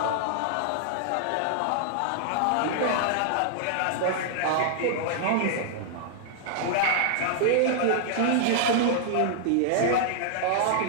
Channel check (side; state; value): both; different; correlation -0.01